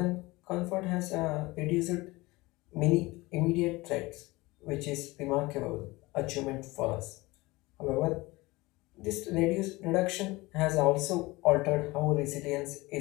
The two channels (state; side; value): quieter; right; 21.6 dB